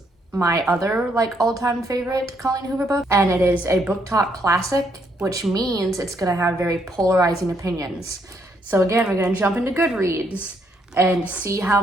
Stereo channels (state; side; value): normal; both; correlation 0.73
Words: my other like all-time favorite Colleen Hoover book, and it is a book talk classic, which means it's gonna have very polarizing opinions. So again, we're gonna jump into Goodreads and see how